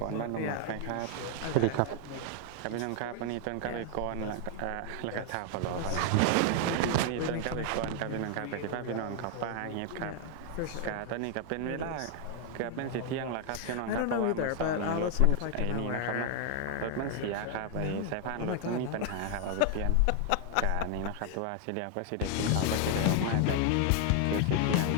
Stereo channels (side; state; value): both; different; correlation 0.00